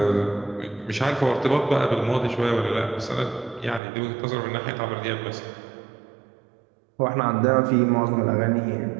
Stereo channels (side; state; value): left; drops out; at 3.8 s